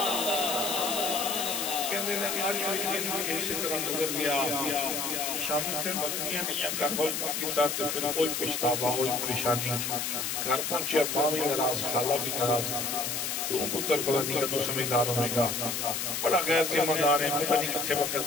شامی پھر بکریاں نہیں کربل پاکیتا تو پھر کوئی پشتابہ کوئی پریشانی گھر پہنچے ماں بھی ناراض خالہ بھی ناراض تو پتر پتہ نہیں کہ تو سمجھدار ہونے کا بڑا غیر ذمہ دار ہے پتہ نہیں کتھے وقت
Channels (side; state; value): left; noise; hiss, 1 dB below the sound